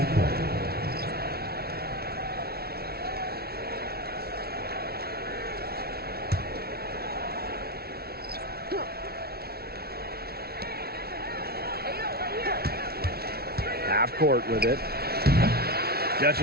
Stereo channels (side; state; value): left; late; 0.45 ms